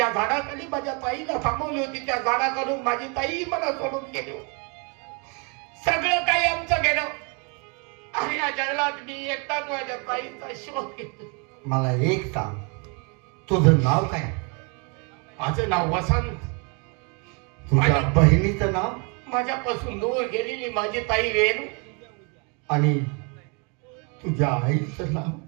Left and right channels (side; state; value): left; quieter; 34.1 dB